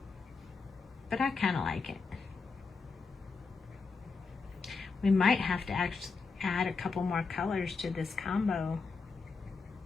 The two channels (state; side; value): quieter; right; 4.6 dB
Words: but I kind of like it. We might have to actually add a couple more colors to this combo.